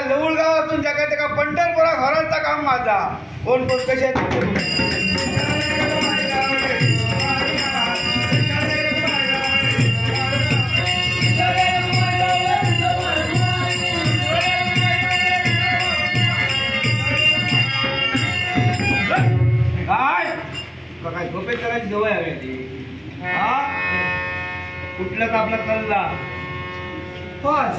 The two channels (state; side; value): identical; both; correlation 1.00